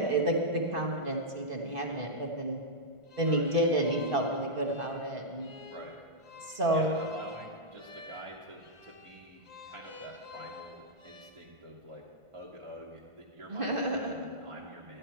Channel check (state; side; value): late; left; 1.5 ms